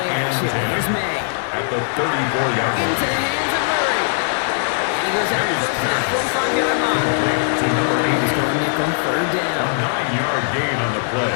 and action. 10 Here's May. at the 34-yard line. Into the hands of Murray. And he goes out first to that 45-yard line. To number 80. He's going nickel, 3rd A down. 9-yard gain on the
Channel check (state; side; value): silent; right; digital silence